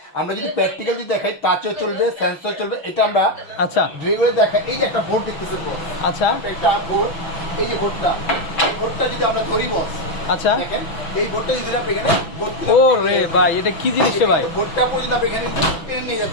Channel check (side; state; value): right; late; 6.0 ms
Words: আমরা যদি প্র্যাকটিক্যাল যদি দেখাই, টাচও চলবে, সেন্সর চলবে, এটা আমরা আচ্ছা ভিডিওতে দেখাই। এই যে একটা বোর্ড দেখতেছেন বস, আচ্ছা একটা বোর্ড, এই যে বোর্ডটা, এই বোর্ডটা যদি আমরা ধরি বস, আচ্ছা। দেখেন এই বোর্ডটা যদি আপনি এখানে ও রে ভাই, এটা কি জিনিস রে ভাই? বোর্ডটা পর্যন্ত আপনি এখানে টেনে নিয়ে